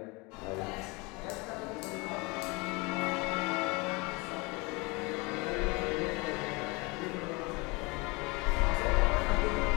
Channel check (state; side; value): quieter; right; 26.8 dB